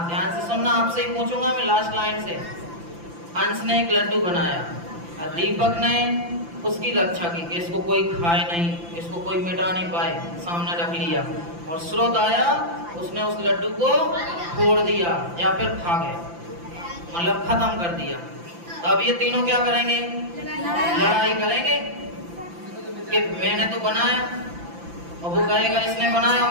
ध्यान से सुनना, आपसे ही पूछूंगा मैं लास्ट लाइन से। अंश ने एक लड्डू बनाया, दीपक ने उसकी रक्षा की कि इसको कोई खाए नहीं, इसको कोई मिटा नहीं पाए, सामने रख लिया। और स्रोत आया, उसने उस लड्डू को तोड़ दिया या फिर खा गया, मतलब खत्म कर दिया। तो अब ये तीनों क्या करेंगे? लड़ाई करेंगे कि मैंने तो बनाया, और वो कहेगा इसने बनाया,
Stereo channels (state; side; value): late; left; 5.9 ms